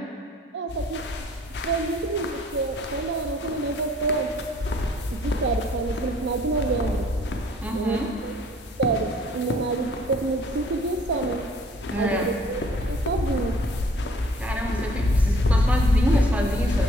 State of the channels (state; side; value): normal; both; correlation 0.57